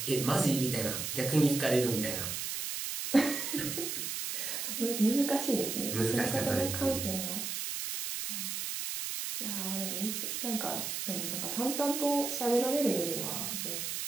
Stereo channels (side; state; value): right; noise; hiss, 3 dB below the sound